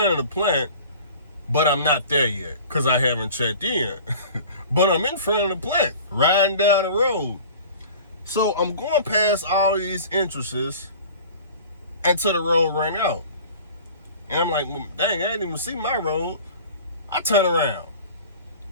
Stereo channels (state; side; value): inverted; both; correlation -0.42